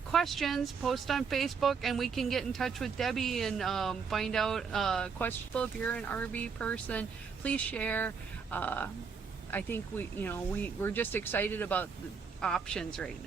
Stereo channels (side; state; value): left; quieter; 5.8 dB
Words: questions, post on Facebook, and we can get in touch with Debbie and find out questions. If you're an RV person, please share. I think we're just excited about the options right